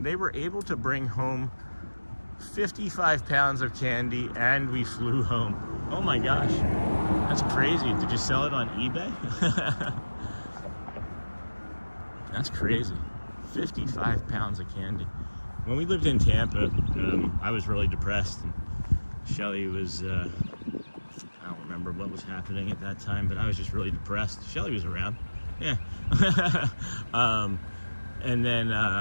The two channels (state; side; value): inverted; both; correlation -1.00